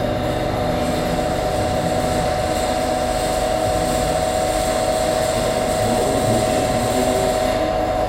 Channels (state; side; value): identical; both; correlation 1.00